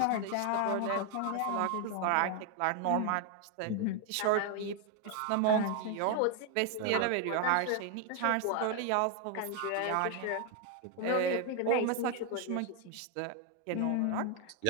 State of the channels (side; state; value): both; different; correlation 0.01